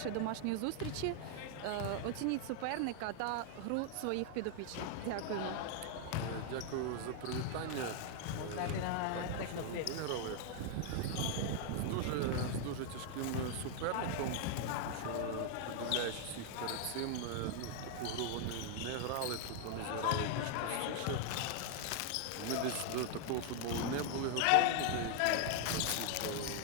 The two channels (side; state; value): both; different; correlation 0.00